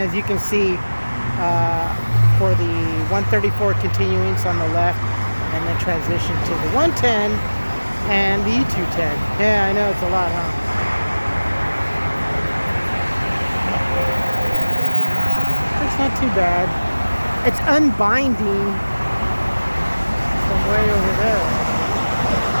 you can see, for the 134 continuance on the left, and then transition to the 110 and the E210. Yeah, I know, it's a lot, huh? It's not too bad. It's unbinding from way over there.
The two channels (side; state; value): both; inverted; correlation -1.00